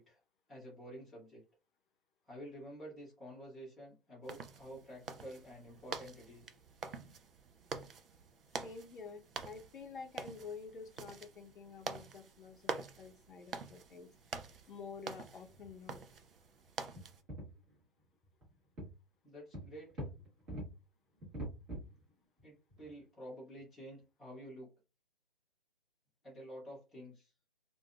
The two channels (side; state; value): both; normal; correlation 0.48